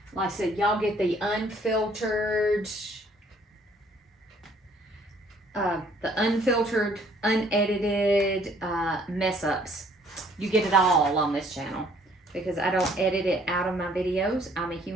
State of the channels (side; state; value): both; normal; correlation 0.61